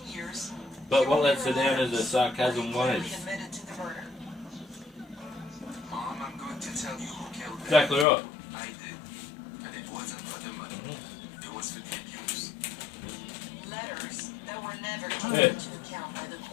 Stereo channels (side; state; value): right; drops out; at 8.1 s